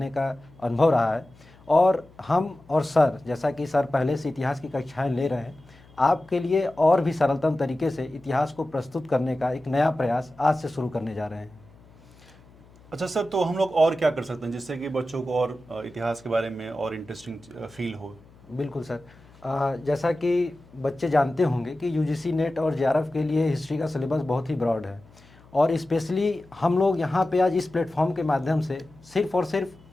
का अनुभव रहा है और हम और सर, जैसा कि सर पहले से इतिहास की कक्षाएं ले रहे हैं, आपके लिए और भी सरलतम तरीके से इतिहास को प्रस्तुत करने का एक नया प्रयास आज से शुरू करने जा रहे हैं। अच्छा सर, तो हम लोग और क्या कर सकते हैं जिससे कि बच्चों को और इतिहास के बारे में और इंटरेस्टिंग फील हो? बिल्कुल सर। जैसा कि बच्चे जानते होंगे कि यूजीसी नेट और जेआरएफ के लिए हिस्ट्री का सिलेबस बहुत ही ब्रॉड है और स्पेशली हम लोग यहाँ पे आज इस प्लेटफॉर्म के माध्यम से सिर्फ और सिर्फ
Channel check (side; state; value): left; noise; hum, 26 dB below the sound